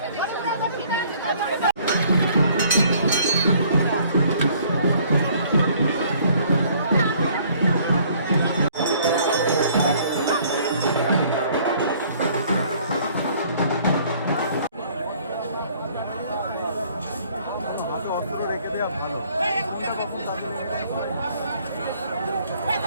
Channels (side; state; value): both; inverted; correlation -0.59